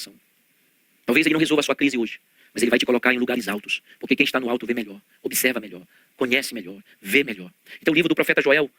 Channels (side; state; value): both; identical; correlation 1.00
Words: Talvez ele não resolva a sua crise hoje, mas ele vai te colocar em lugares altos. Porque quem está no alto vê melhor, observa melhor, conhece melhor, vê melhor. Então o livro do profeta Joel